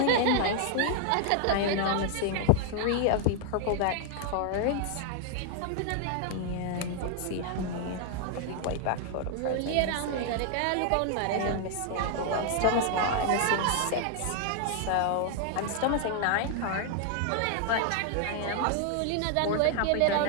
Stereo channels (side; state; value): both; different; correlation 0.00